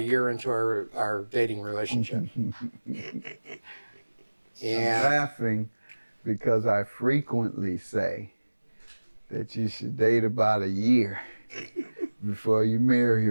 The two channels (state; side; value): inverted; both; correlation -1.00